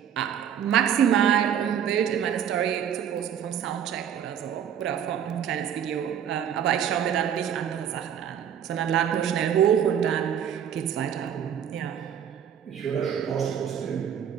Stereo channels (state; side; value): quieter; left; 9.0 dB